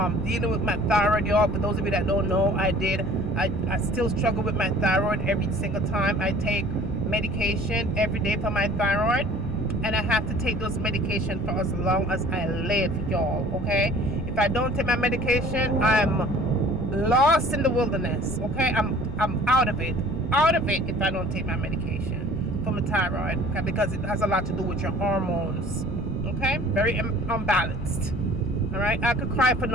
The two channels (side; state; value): left; noise; rumble, 9 dB below the sound